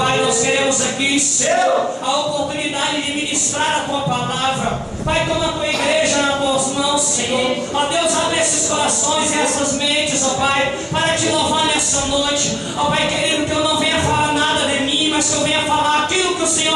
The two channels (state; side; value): identical; both; correlation 1.00